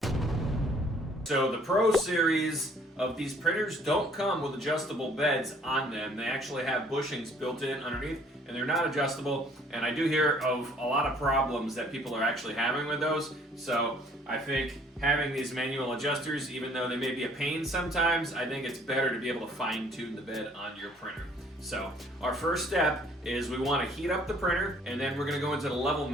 So the Pro series of these printers don't come with adjustable beds on them. They actually have bushings built in underneath, and they're not adjustable. And I do hear of a lot of problems that people are actually having with those. So I think having these manual adjusters, even though they may be a pain sometimes, I think it's better to be able to fine-tune the bed on your printer. So our first step is we want to heat up the printer, and then we're going to go into the level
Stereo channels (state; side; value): normal; both; correlation 0.59